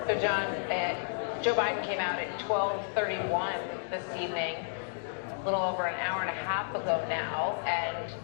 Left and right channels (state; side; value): silent; right; digital silence